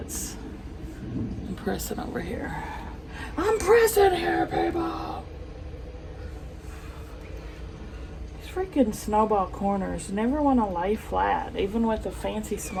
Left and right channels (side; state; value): both; identical; correlation 1.00